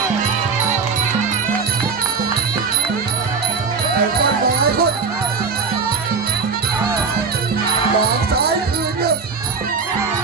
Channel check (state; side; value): quieter; left; 5.2 dB